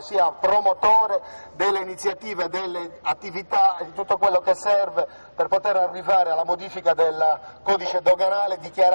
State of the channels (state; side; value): inverted; both; correlation -1.00